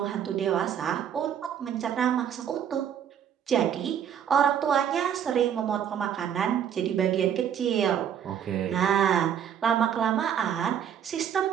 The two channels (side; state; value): left; quieter; 9.0 dB